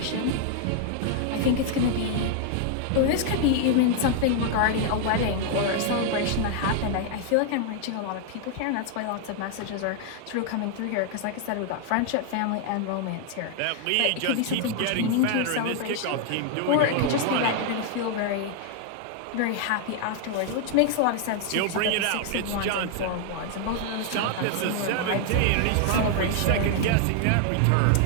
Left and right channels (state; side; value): different; both; correlation 0.00